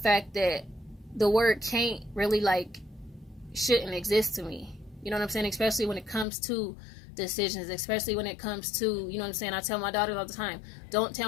that the word can't really, like, shouldn't exist to me, you know what I'm saying. Especially when it comes to decisions, especially when it comes to, you know what I'm saying. I tell my daughters all the time, don't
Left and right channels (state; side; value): drops out; right; at 6.2 s